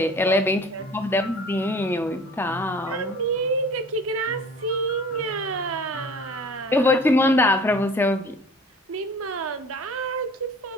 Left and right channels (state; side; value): normal; both; correlation 0.45